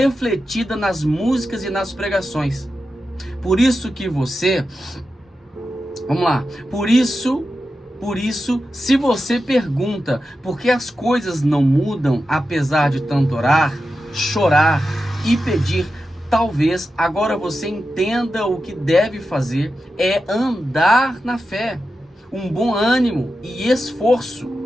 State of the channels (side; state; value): both; normal; correlation 0.91